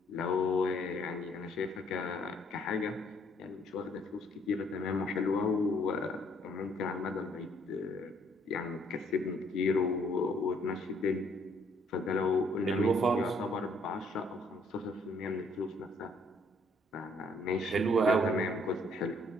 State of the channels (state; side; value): normal; both; correlation 0.65